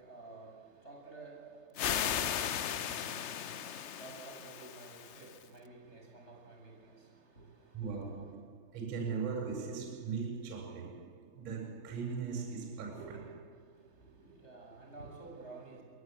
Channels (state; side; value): late; right; 3.3 ms